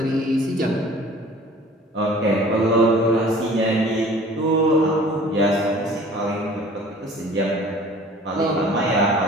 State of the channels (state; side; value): normal; both; correlation 0.48